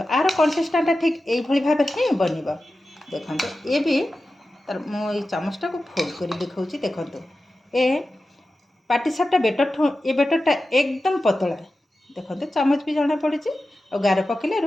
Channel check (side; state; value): both; normal; correlation 0.93